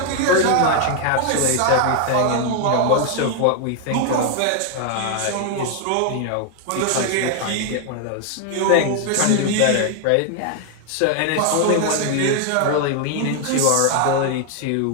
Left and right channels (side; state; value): both; different; correlation 0.00